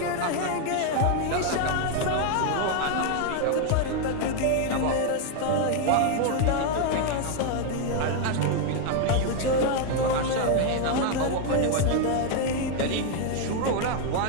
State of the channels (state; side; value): different; both; correlation 0.01